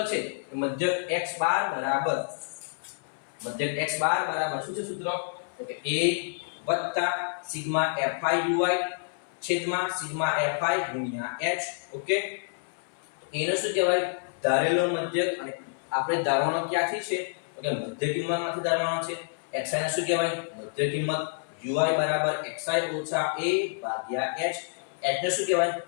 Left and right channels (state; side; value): silent; right; 59 dB below the other